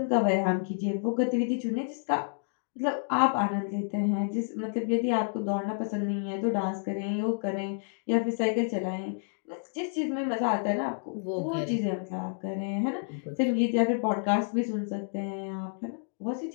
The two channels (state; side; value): silent; right; digital silence